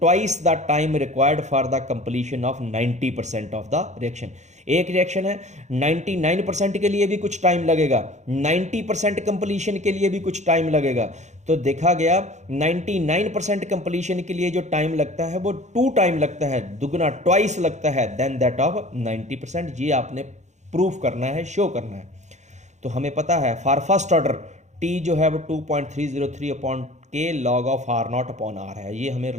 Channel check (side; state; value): left; late; 0.34 ms